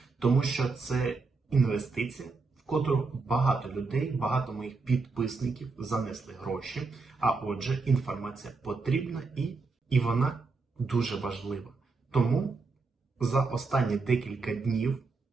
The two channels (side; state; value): left; quieter; 4.1 dB